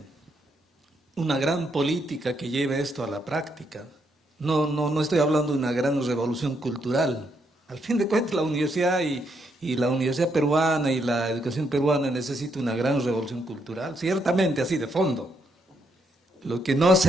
Una gran política que lleve esto a la práctica. No estoy hablando de una gran revolución cultural. Al fin de cuentas, la universidad y y la universidad peruana y la educación peruana necesita una gran revolución cultural, ciertamente así de fondo, lo que no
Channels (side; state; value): both; normal; correlation 0.76